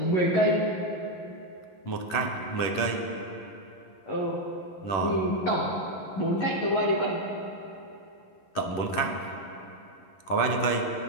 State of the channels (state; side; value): late; right; 11 ms